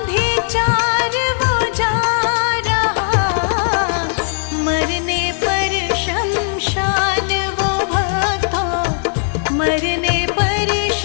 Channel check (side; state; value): right; silent; digital silence